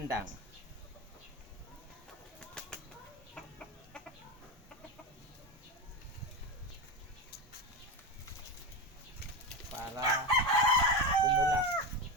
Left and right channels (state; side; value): normal; both; correlation 0.17